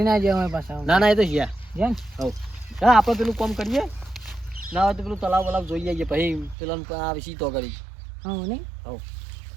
ના જાય હોય પાછા ના ના એ તો છે જેમ હવ હા આપણે પેલું કામ કરીએ ના હોય તો પેલું તલાવ વલાવ જોઈ આવીએ પછી પેલા આ વિશે તો કરી હા નહીં હવ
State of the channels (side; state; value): left; drops out; at 6.6 s